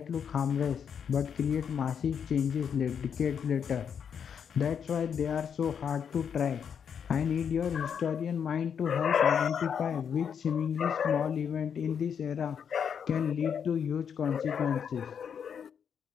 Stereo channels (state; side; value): quieter; right; 7.5 dB